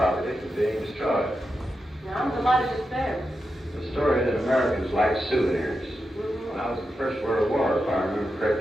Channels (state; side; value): normal; both; correlation 0.88